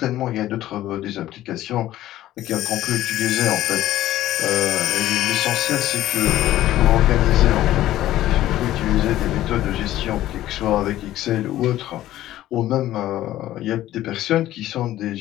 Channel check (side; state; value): right; quieter; 14.1 dB